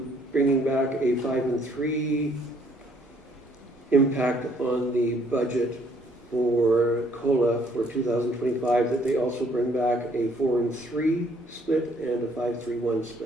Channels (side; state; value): both; normal; correlation 0.64